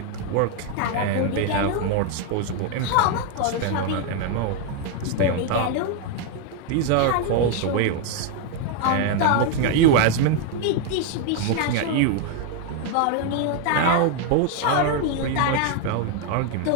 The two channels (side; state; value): both; different; correlation 0.01